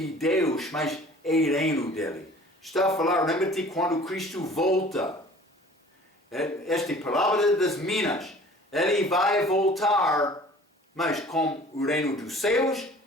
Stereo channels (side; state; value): both; normal; correlation 0.48